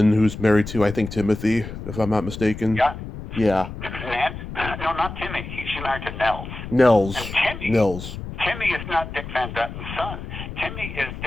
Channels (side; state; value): left; noise; rumble, 9 dB below the sound